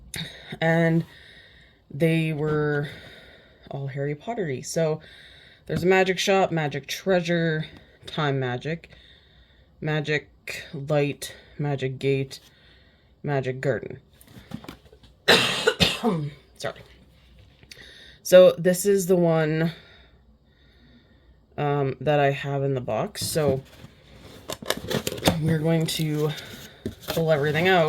and they were all Harry Pottery. So there's a magic shop, magic treasure, time magic, magic light, magic gate, magic garden. Sorry. So this is the one that I have in the box. So we're going to pull everything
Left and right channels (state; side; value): identical; both; correlation 1.00